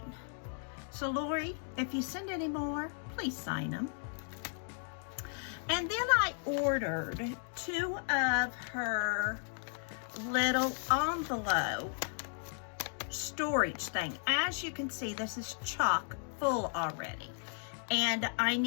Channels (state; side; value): silent; right; 54 dB below the other